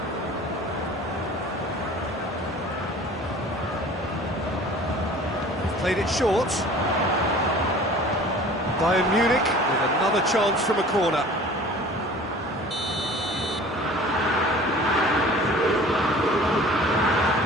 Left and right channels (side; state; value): both; normal; correlation 0.45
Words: Played it short. Bayern Munich with another chance from a corner.